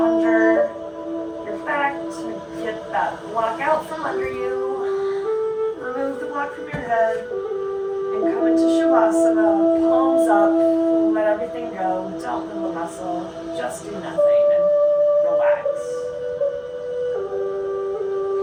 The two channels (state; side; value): identical; both; correlation 1.00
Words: your back to get that block out from under you. Remove the block from your head and come into Shavasana, palms up, let everything go, don't move a muscle, just do nothing and relax.